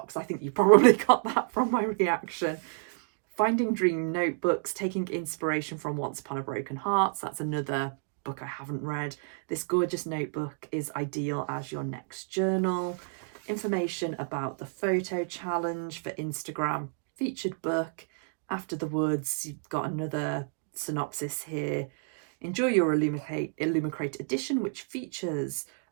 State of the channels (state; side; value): silent; left; digital silence